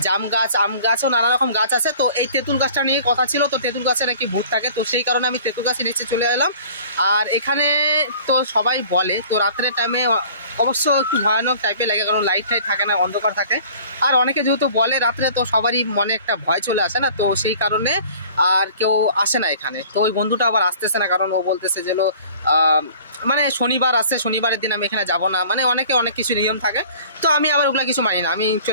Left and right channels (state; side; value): inverted; both; correlation -0.48